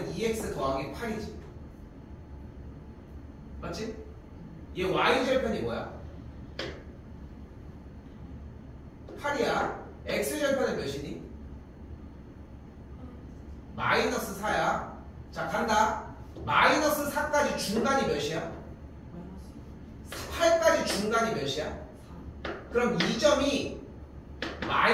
2x 더하기 8이지. 맞지? 얘 y절편이 뭐야? 8이야. x절편은 몇이니? 마이너스 4야. 자 간다. 마이너스 4까지 중간이 몇이야? 8까지 중간이 몇이야? 그럼 이 점이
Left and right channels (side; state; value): both; identical; correlation 1.00